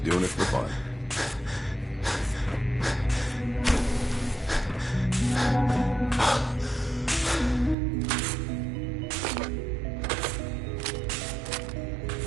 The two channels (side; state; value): left; drops out; at 7.8 s